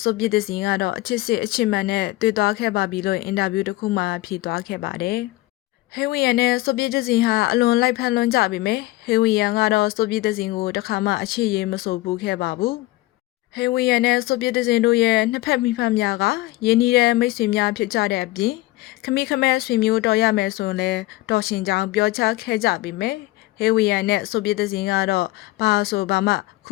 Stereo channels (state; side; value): quieter; right; 18.6 dB